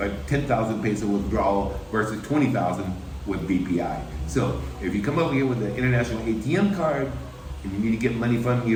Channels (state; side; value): identical; both; correlation 1.00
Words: 10,000 peso withdrawal versus 20,000 with BPI. So if you come over here with an international ATM card and you need to get money from